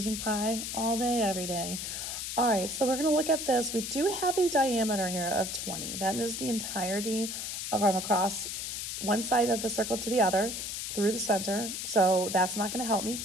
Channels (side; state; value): left; noise; hiss, 5 dB below the sound